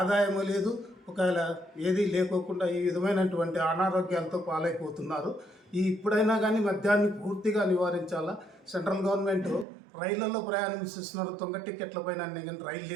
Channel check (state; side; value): drops out; left; at 9.7 s